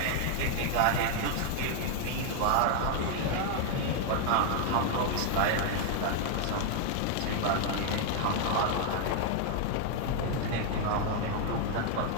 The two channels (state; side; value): different; both; correlation 0.00